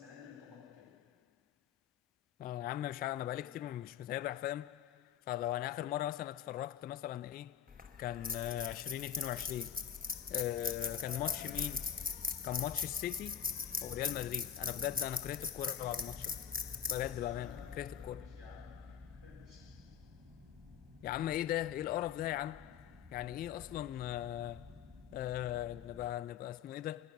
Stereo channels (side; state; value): right; quieter; 9.2 dB